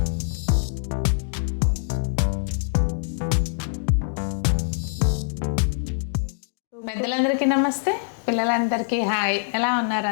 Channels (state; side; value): silent; right; digital silence